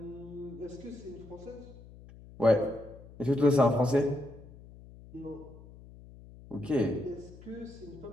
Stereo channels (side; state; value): left; noise; hum, 19 dB below the sound